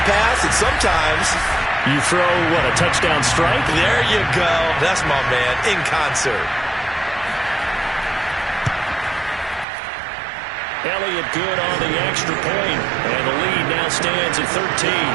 pass, and sometimes you throw, what, a touchdown strike? There you go. That's my man, in concert. Elliott good on the extra point, and the lead now stands at 13.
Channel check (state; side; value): drops out; left; at 9.7 s